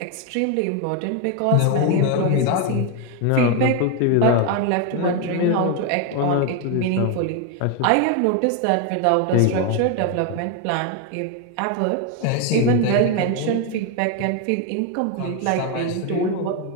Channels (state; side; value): different; both; correlation 0.01